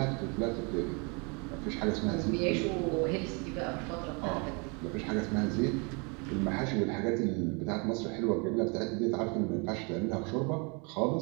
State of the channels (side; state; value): left; quieter; 32.6 dB